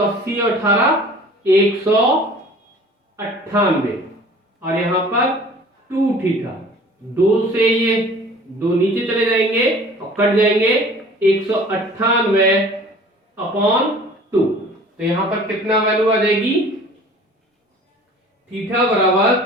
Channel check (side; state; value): both; normal; correlation 0.47